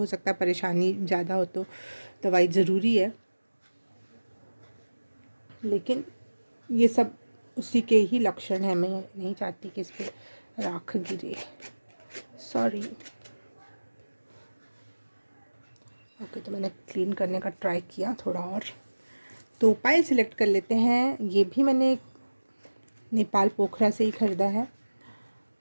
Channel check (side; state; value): both; inverted; correlation -1.00